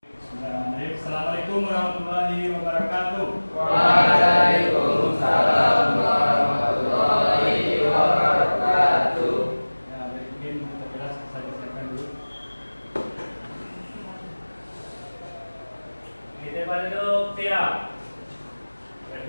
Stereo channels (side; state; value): both; inverted; correlation -1.00